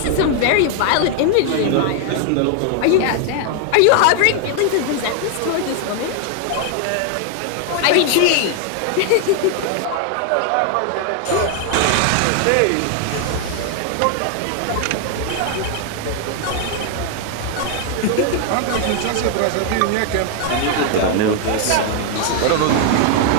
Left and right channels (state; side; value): different; both; correlation 0.00